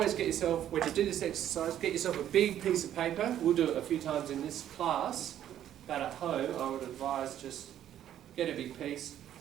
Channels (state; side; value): quieter; left; 11.1 dB